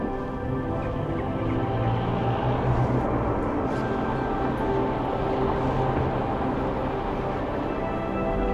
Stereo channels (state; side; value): identical; both; correlation 1.00